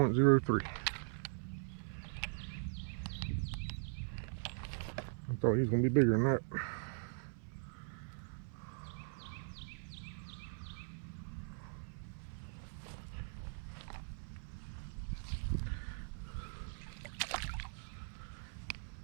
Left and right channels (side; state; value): left; silent; 51 dB below the other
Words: I thought he was going to be bigger than that.